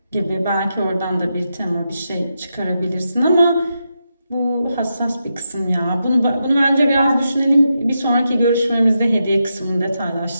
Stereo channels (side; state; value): both; inverted; correlation -0.86